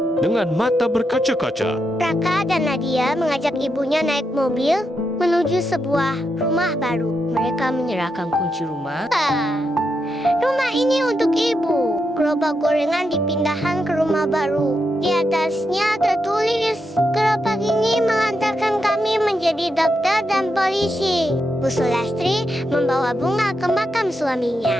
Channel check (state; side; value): normal; both; correlation 0.84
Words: dengan mata berkaca-kaca. Raka dan Nadia mengajak ibunya naik mobil menuju sebuah rumah baru. Mereka menyerahkan kunci rumah. Rumah ini untuk ibu. Gerobak gorengan dipindahkan ke rumah baru. Di atasnya tertulis, gerobak ini mengantarkan kami menjadi dokter dan polisi. Bu Sulastri membawa bunga ke makam